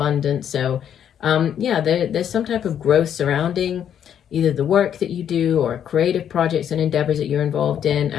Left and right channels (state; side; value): quieter; right; 9.3 dB